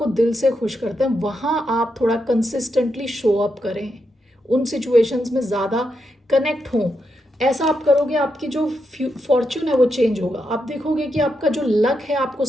दिल से खुश करते हैं, वहाँ आप थोड़ा कंसिस्टेंटली शो अप करें, उन सिचुएशंस में ज़्यादा कनेक्ट हों। ऐसा आप करोगे, आपकी जो फॉर्च्यून है वो चेंज होगा, आप देखोगे कि आपका जो लक है आपको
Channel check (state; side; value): normal; both; correlation 0.83